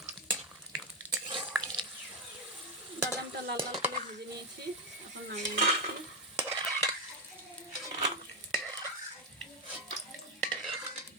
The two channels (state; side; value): normal; both; correlation 0.06